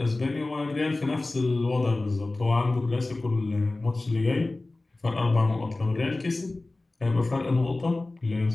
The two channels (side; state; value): right; quieter; 3.0 dB